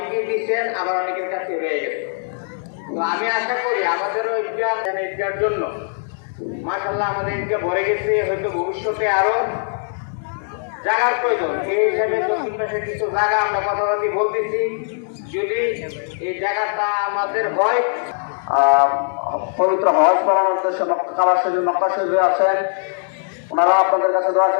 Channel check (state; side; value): silent; right; 65 dB below the other